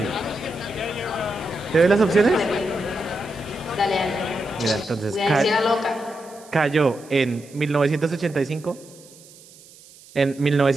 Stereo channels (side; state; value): right; noise; hiss, 23 dB below the sound